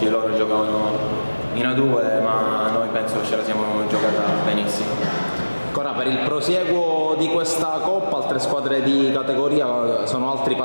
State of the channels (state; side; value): inverted; both; correlation -1.00